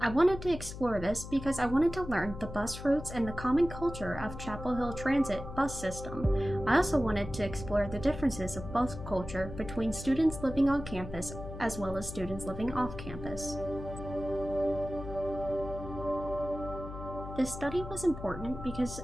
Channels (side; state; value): left; noise; hum, 10 dB below the sound